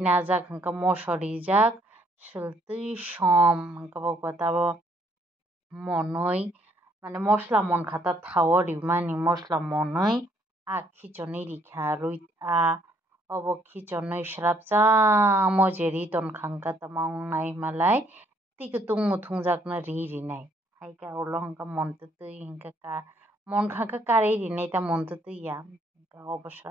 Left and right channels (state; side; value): normal; both; correlation 0.67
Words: najak hingka moso rijak swltui som hingka tabo monoi mane mosla monkha ta thao o rimani mosla monoi khichonui rikha rui obo khichonui srabjamo je ri tonkha hingka tamo wngnai himalai tui kutung muthungjak no rinai haika ulo hingka mon tutui hingka monkha hingka karui rinai ta mon tutui ya hingka obo